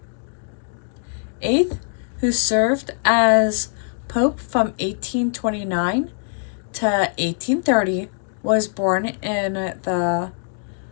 Eighth, who served as Pope from 1829 to 1830, was born in the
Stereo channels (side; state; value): right; silent; digital silence